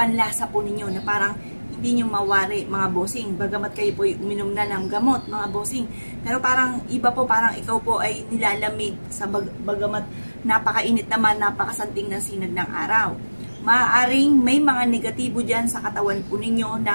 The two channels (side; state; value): both; inverted; correlation -1.00